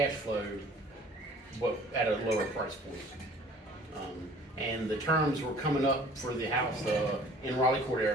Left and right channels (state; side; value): normal; both; correlation 0.50